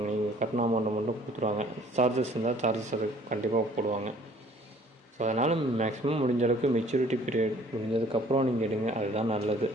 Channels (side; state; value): both; normal; correlation 0.56